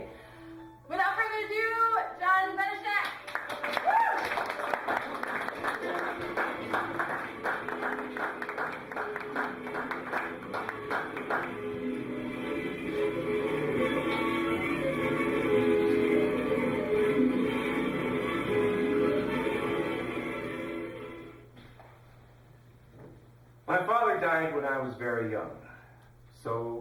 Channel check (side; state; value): both; identical; correlation 1.00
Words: Without further ado, John Benischek. My father died when I was very young,